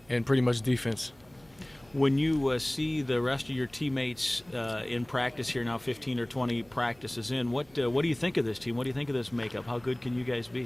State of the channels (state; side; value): noise; right; hum, 29 dB below the sound